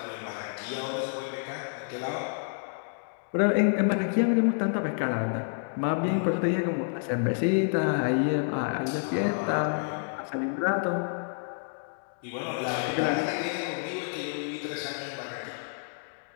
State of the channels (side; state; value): right; silent; digital silence